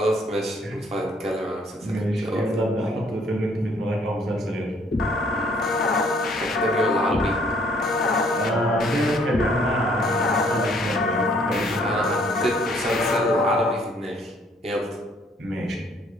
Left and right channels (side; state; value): both; normal; correlation 0.63